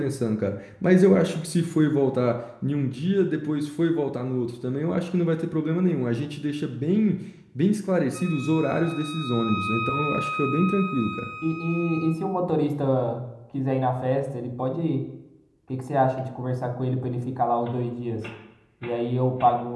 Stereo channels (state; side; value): identical; both; correlation 1.00